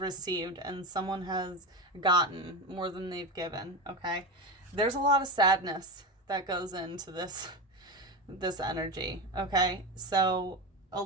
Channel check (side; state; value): both; normal; correlation 0.19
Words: and someone has gotten more than they've given, okay? There's a lot of sadness that goes into this energy, okay? So a